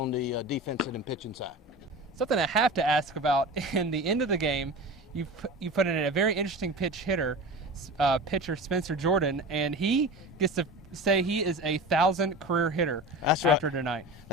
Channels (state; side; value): normal; both; correlation 0.31